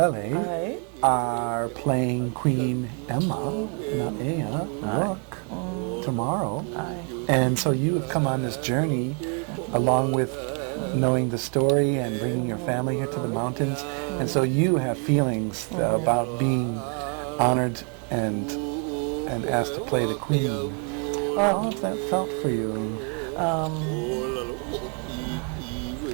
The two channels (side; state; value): left; quieter; 39.2 dB